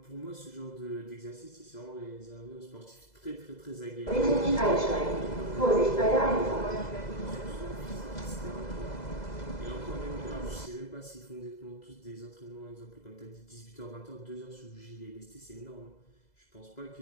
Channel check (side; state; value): right; late; 2.0 ms